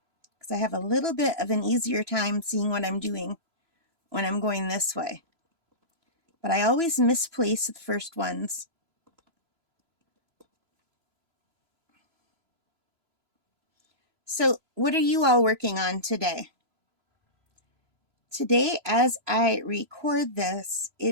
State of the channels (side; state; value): left; late; 3.0 ms